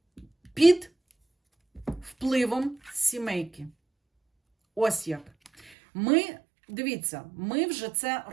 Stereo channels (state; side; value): drops out; left; at 5.7 s